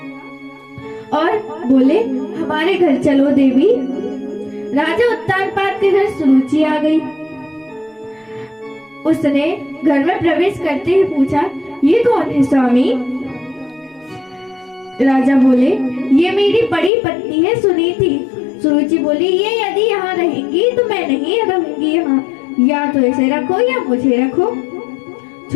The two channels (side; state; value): right; drops out; at 16.9 s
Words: और बोले हमारे घर चलो देवी। राजा उत्तानपाद के घर सुरुचि आ गई। उसने घर में प्रवेश करते ही पूछा, ये कौन है स्वामी? राजा बोले, ये मेरी बड़ी पत्नी है सुनीति। सुरुचि बोली, ये यदि यहाँ रहेंगी तो मैं नहीं रहूंगी यहाँ, या तो इसे रखो या मुझे रखो।